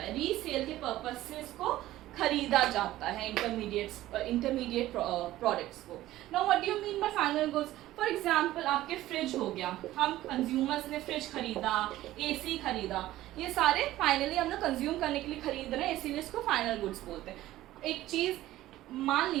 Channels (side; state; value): left; quieter; 15.2 dB